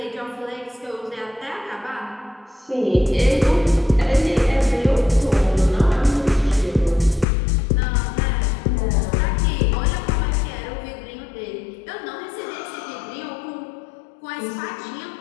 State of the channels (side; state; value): right; drops out; at 7.2 s